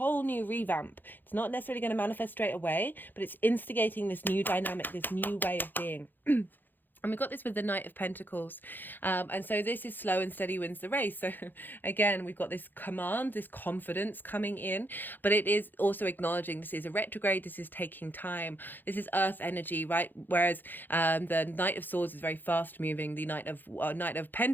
new revamp. It's not necessarily going to manifest straight away, but it's instigating this new dynamic, this new way of being. And we got this with the Knight of Pentacles. And so this is slow and steady wins the race. So again, we've got this command, this confidence coming in, but it is also acknowledging this is a retrograde. This is taking time. This is earth energy, right? Whereas the Knight of Swords is very fast moving. The Knight of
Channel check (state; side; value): late; right; 0.090 ms